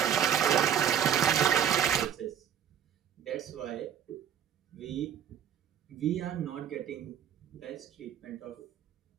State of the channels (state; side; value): quieter; left; 9.1 dB